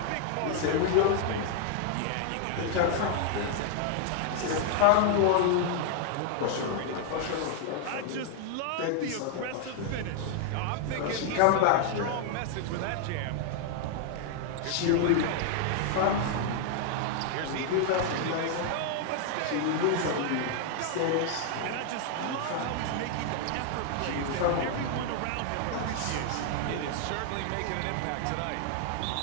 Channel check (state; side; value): different; both; correlation 0.00